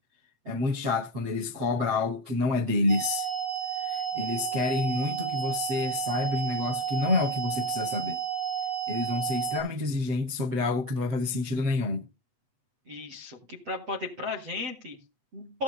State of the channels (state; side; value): late; left; 8.1 ms